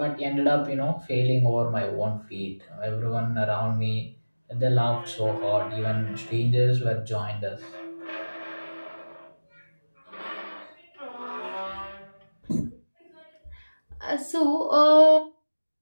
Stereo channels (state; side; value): inverted; both; correlation -1.00